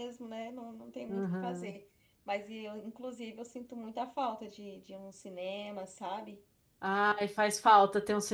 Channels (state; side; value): identical; both; correlation 1.00